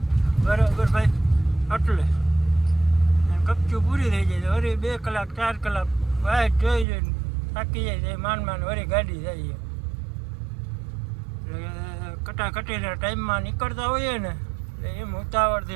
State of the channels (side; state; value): left; drops out; at 6.9 s